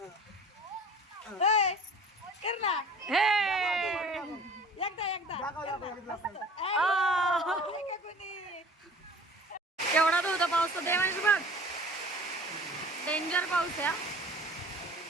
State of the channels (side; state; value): both; normal; correlation 0.44